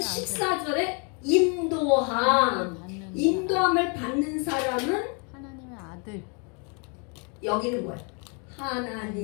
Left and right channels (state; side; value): quieter; right; 35.7 dB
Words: 인도함. 인도함을 받는 사람은 하나님의 아들. 여기는 뭐야?